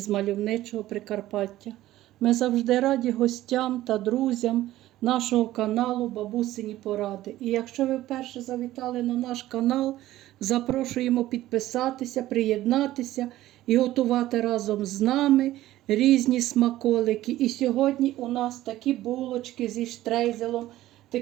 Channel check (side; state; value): left; quieter; 15.0 dB